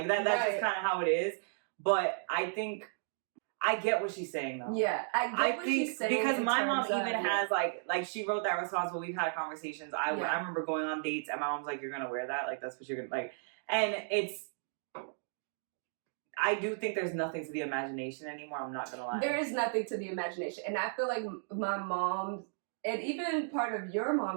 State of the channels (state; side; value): silent; left; digital silence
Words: that's just kind of how it is. But I think I get what she's saying though. Yeah, I get what she's saying because my mom even has like she wrote that response. But we've had conversations. I remember going on dates and my mom's like, "You're gonna wear that? Like that's what you're gonna like." And it's. I do think there's nothing to the imagination anymore. I'm not gonna lie. There is nothing to the imagination, and I feel like my mom and even part of your